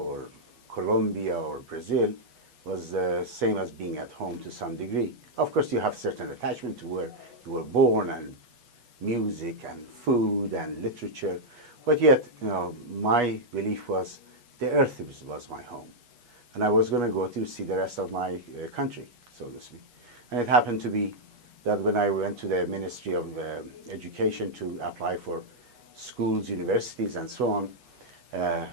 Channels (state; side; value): late; left; 8.2 ms